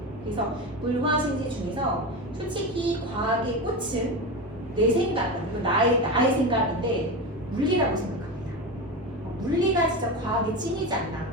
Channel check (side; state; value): left; noise; rumble, 24 dB below the sound